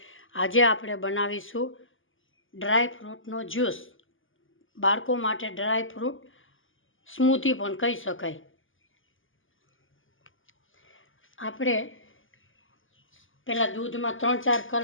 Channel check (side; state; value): right; late; 0.58 ms